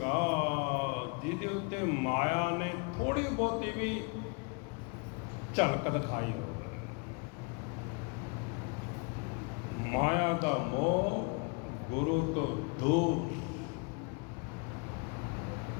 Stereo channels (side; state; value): right; quieter; 32.8 dB